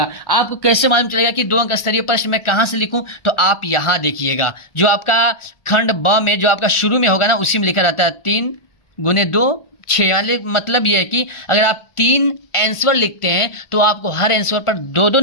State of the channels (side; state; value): right; late; 1.4 ms